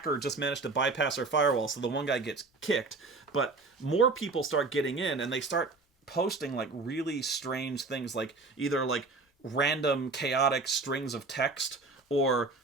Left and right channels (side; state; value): left; quieter; 3.8 dB